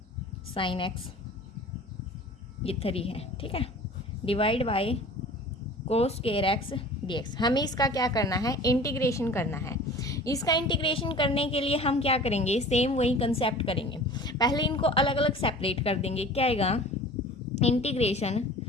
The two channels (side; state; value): both; normal; correlation 0.42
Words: sin x, ये 3 है, ठीक है, divide by cos square x dx। हमें इसका क्या करना है? इंटीग्रेशन करना है। इसका इंटीग्रेशन करने के लिए हम क्या करेंगे? सेम वही कंसेप्ट करेंगे। पहले इनको अलग अलग सेपरेट कर देंगे। क्या आएगा? Integration